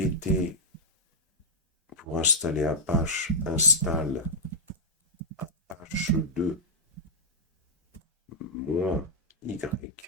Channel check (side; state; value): both; normal; correlation -0.07